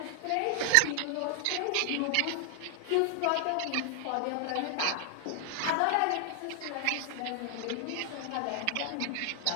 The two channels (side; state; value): both; different; correlation 0.00